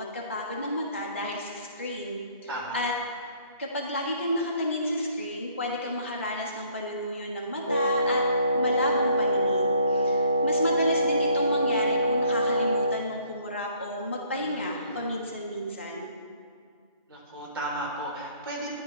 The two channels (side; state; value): both; inverted; correlation -0.61